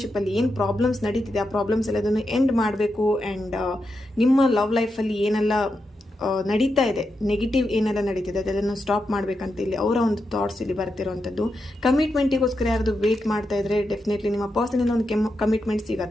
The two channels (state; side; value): normal; both; correlation 0.86